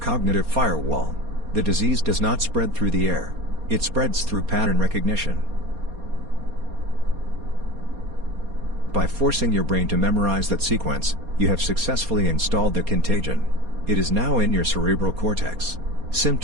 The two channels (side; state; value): left; late; 4.2 ms